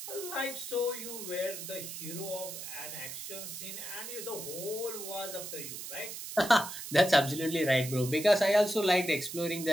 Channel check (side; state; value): right; noise; hiss, 8 dB below the sound